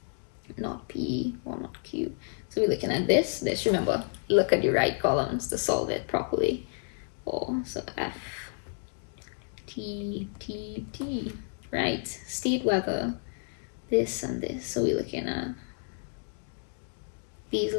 not P or not Q. So we're looking at this. Remember, look at the right columns to solve it properly. Or, so F, T, T, T. Right, state whether this and this. So we're looking at these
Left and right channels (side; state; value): right; silent; 58 dB below the other